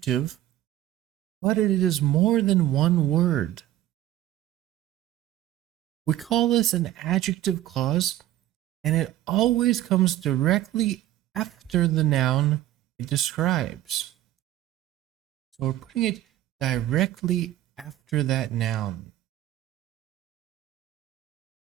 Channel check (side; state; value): left; quieter; 13.6 dB